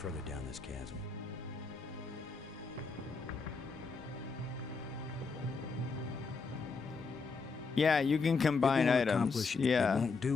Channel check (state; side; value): quieter; right; 4.6 dB